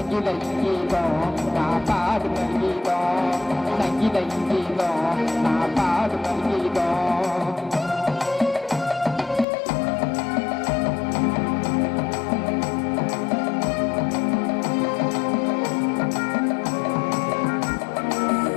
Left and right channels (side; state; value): right; drops out; at 9.5 s